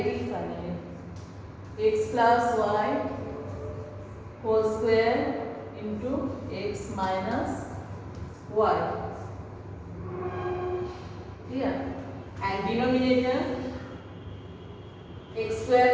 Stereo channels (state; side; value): identical; both; correlation 1.00